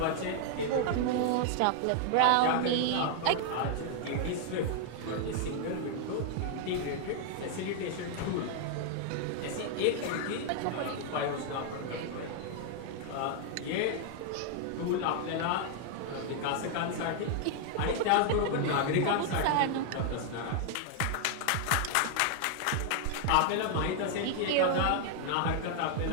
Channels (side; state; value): both; different; correlation 0.00